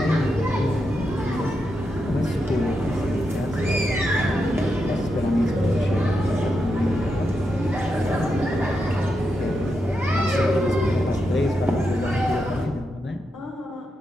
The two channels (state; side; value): normal; both; correlation 0.85